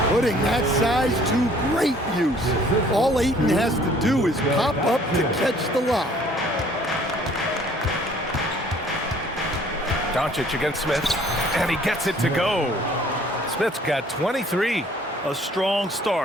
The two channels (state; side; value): normal; both; correlation 0.57